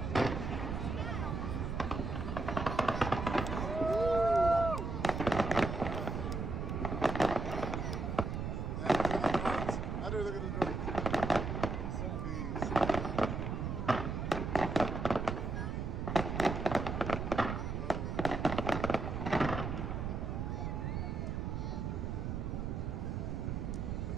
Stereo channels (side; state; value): right; noise; rumble, 2 dB below the sound